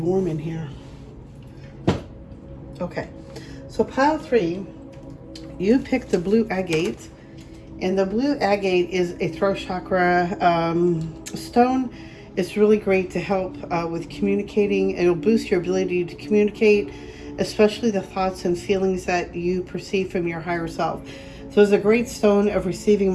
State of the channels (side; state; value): both; identical; correlation 1.00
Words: in here. Okay. So pile 3, you pick the blue agate. And the blue agate is a throat chakra stone. It's really great to help with communicating. It'll boost your ability to communicate, especially the thoughts and feelings that you perceive from your higher self. So it's a great stone of receiving